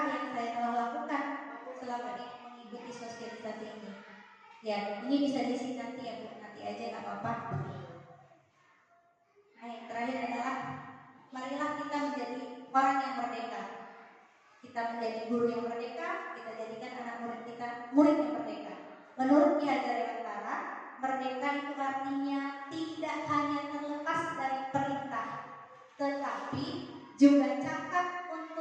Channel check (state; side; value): identical; both; correlation 1.00